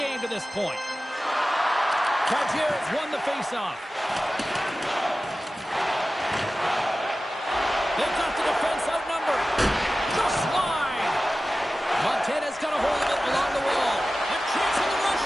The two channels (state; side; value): normal; both; correlation 0.95